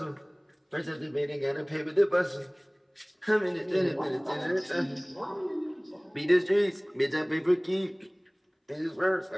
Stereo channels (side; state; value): both; identical; correlation 1.00